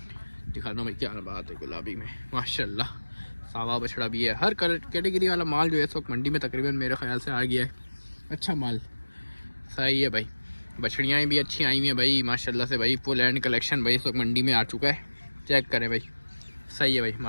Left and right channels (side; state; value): both; inverted; correlation -1.00